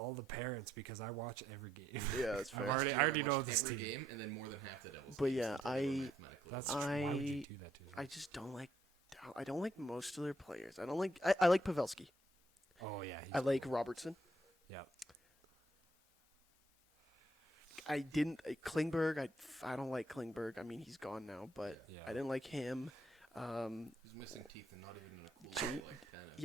the parents because I watch every game. Yeah, that's fair. I already know this every team. game, and then more than half the Devils. But yeah, that's true. Why would you do that to them? I just don't like. I don't like most of their players. I don't like. I like Pavelski. Oh yeah. I like Robertson. Yeah. I didn't Klingberg. I don't like Klingberg. I mean, he's gone now, but I didn't like him. He's missing teeth and not even in a cool way, like tennis.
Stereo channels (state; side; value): normal; both; correlation 0.72